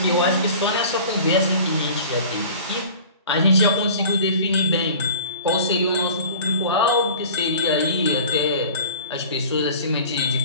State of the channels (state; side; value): inverted; both; correlation -0.42